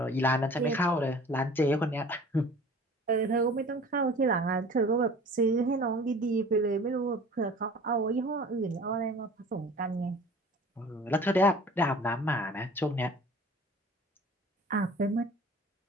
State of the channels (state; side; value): normal; both; correlation 0.45